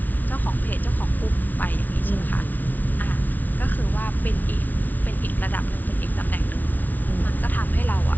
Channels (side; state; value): right; late; 0.080 ms